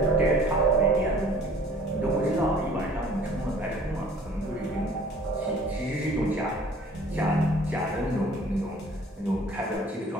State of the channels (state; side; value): normal; both; correlation 0.51